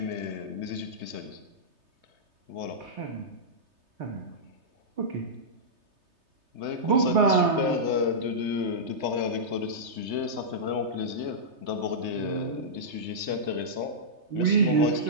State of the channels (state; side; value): late; left; 3.3 ms